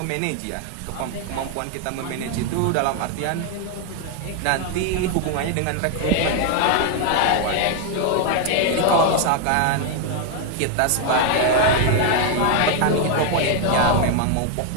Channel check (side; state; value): both; different; correlation 0.00